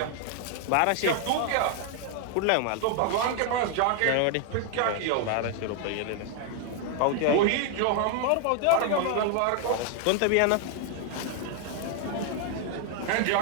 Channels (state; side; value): different; both; correlation 0.00